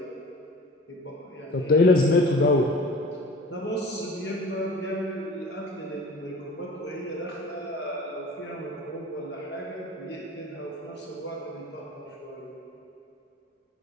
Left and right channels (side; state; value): both; normal; correlation 0.42